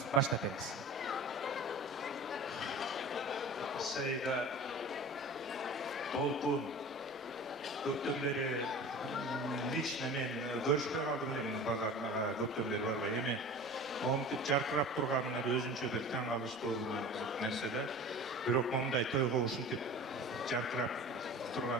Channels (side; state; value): both; normal; correlation 0.37